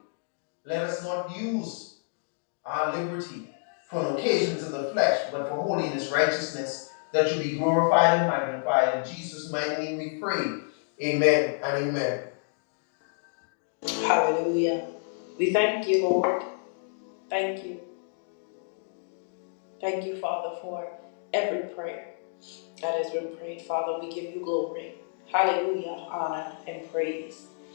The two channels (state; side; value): silent; right; digital silence